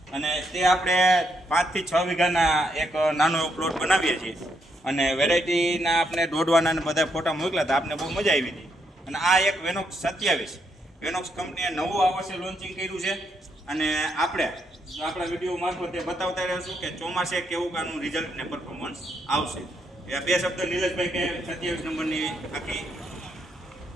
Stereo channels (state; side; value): normal; both; correlation 0.77